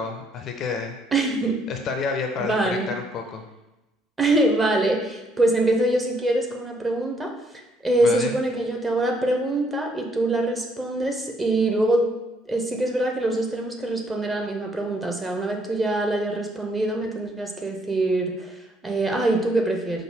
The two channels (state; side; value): normal; both; correlation 0.69